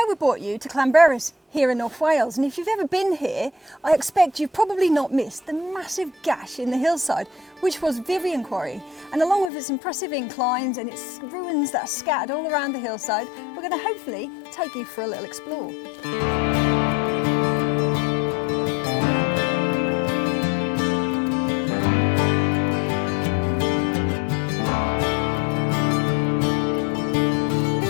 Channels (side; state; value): right; drops out; at 9.5 s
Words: we brought you to Llanberis here in North Wales. And if you've ever been here, I expect you've probably not missed the massive gash in the hillside, which was Vivian Quarry. And along with its impressive inclines and its ruins that are scattered all around the hillside, we're going to hopefully take you for a little explore.